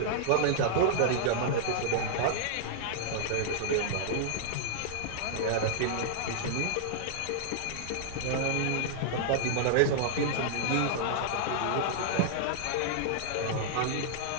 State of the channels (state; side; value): different; both; correlation -0.01